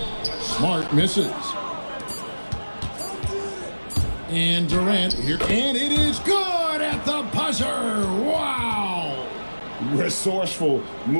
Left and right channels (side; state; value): both; inverted; correlation -1.00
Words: Smart misses. And Durant here. And it is good at the buzzer. Wow. Resourceful